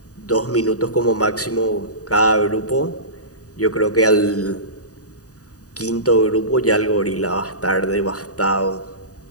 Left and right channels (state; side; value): late; right; 0.67 ms